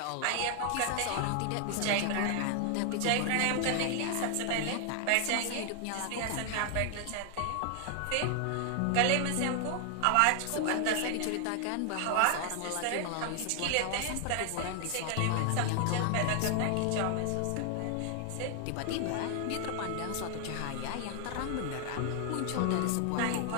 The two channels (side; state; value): both; different; correlation 0.00